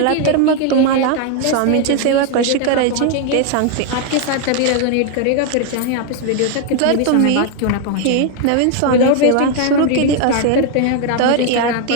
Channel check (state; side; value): different; both; correlation 0.01